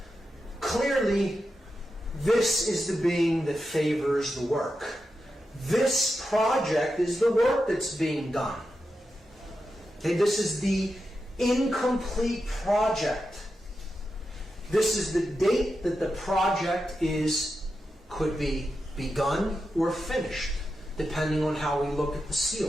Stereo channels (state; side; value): normal; both; correlation 0.89